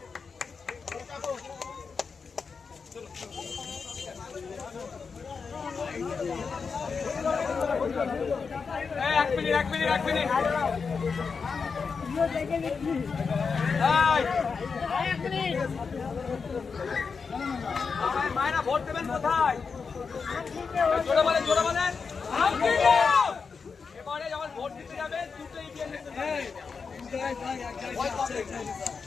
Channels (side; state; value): right; quieter; 5.3 dB